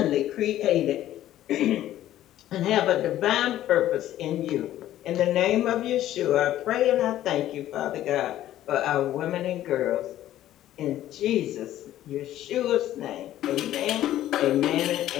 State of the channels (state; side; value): quieter; right; 13.1 dB